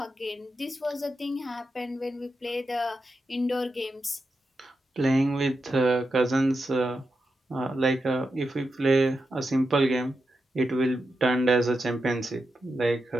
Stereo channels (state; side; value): normal; both; correlation 0.87